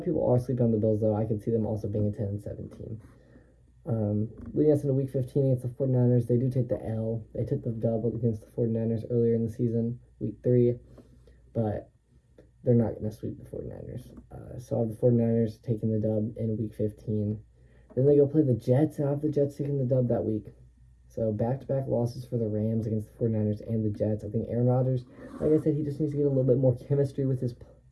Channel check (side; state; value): both; identical; correlation 1.00